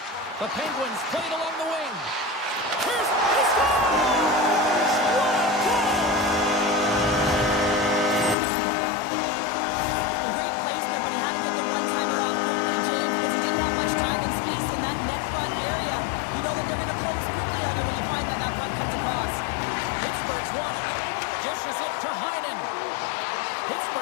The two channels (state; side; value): drops out; right; at 8.3 s